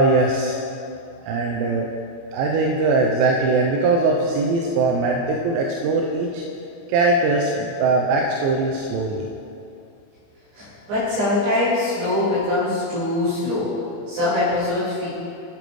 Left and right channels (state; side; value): late; left; 29 ms